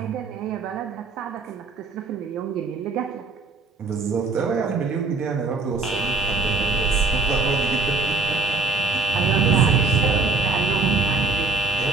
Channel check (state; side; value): quieter; left; 3.6 dB